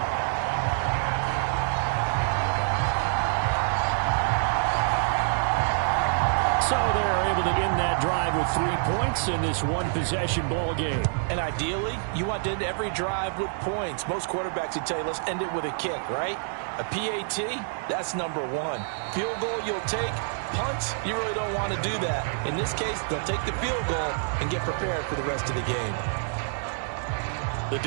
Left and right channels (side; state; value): left; silent; digital silence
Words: So they're able to end that drive with 3 points in this one-possession ball game. And ideally, you want to end every drive with points. Most quarterbacks would tell you, let's end it with a kick, right? A PAT, that's number 1. Field goal you'll take. Punts, you really don't want to do that. In this case, they'll take the field goal and get prepared for the rest of the game. The